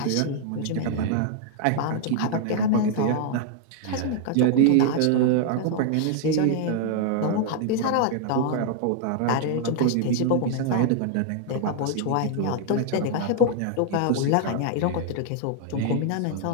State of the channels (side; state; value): both; different; correlation 0.00